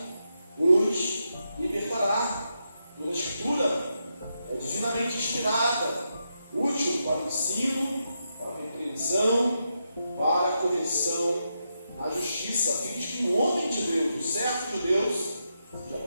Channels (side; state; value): both; inverted; correlation -0.84